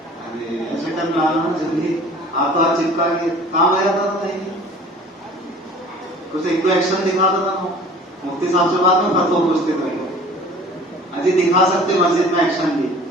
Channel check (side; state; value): both; normal; correlation 0.46